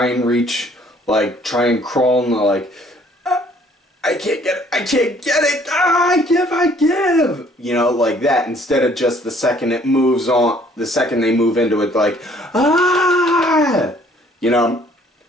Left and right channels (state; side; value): normal; both; correlation 0.60